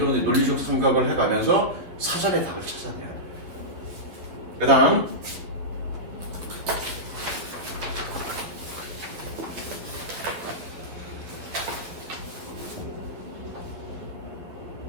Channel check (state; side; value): late; left; 11 ms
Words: 논리적 생각을 해가면서 사전에 답을 찾아내야 돼. 그 다음